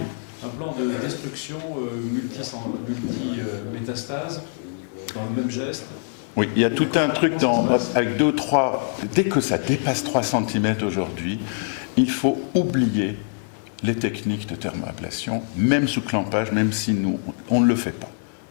un plan de destruction multi-métastase dans le même geste? Oui, il y a tout un truc avec 2 ou 3... Dès que ça dépasse 3 cm aujourd'hui, il faut oublier les techniques de thermoablation, même sous clampage, même si nous, on ne le fait pas.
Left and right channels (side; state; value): right; silent; 63 dB below the other